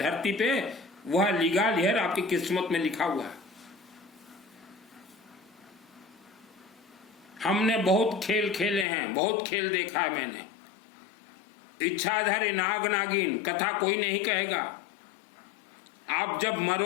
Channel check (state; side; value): drops out; right; at 8.8 s